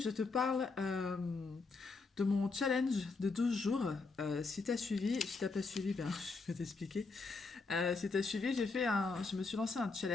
te parle de mon challenge de 12 jours. Si tu as suivi, si tu n'as pas suivi, ben, je vais t'expliquer. Si tu as suivi, je me suis lancé un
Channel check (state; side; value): quieter; right; 4.1 dB